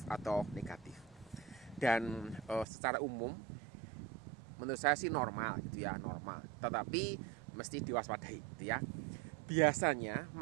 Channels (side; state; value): left; drops out; at 2.7 s